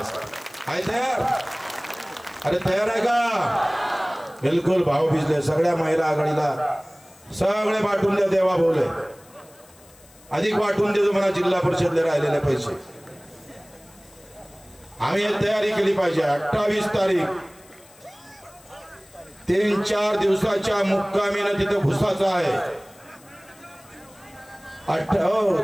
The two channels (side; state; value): left; noise; hiss, 26 dB below the sound